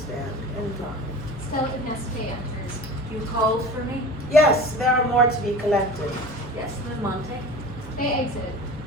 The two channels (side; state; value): both; normal; correlation 0.37